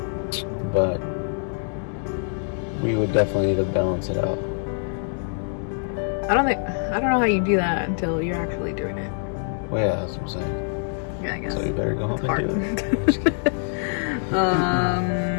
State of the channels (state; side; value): silent; right; 62 dB below the other